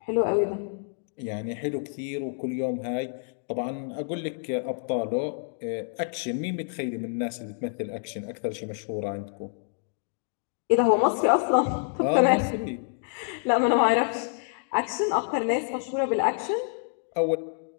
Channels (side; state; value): right; silent; digital silence